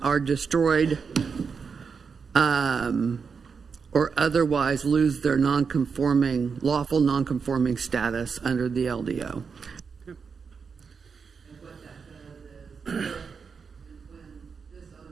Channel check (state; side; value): quieter; left; 5.7 dB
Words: are destroyed or otherwise lose their lawful non-conforming status under the LDO.